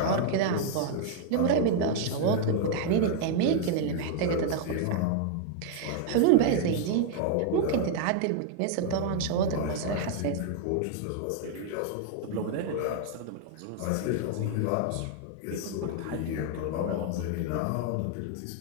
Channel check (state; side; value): different; both; correlation 0.00